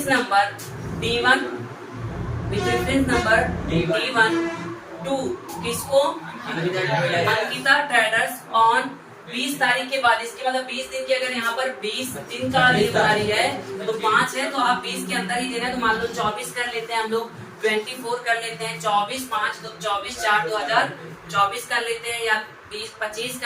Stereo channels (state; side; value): identical; both; correlation 1.00